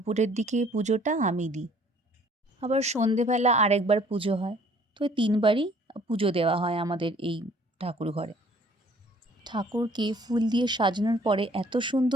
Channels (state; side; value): normal; both; correlation 0.57